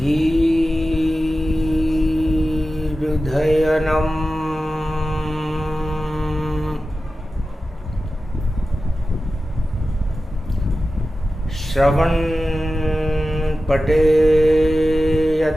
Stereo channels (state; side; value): normal; both; correlation 0.94